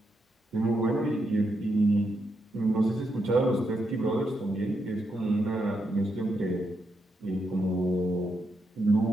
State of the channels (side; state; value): both; normal; correlation 0.82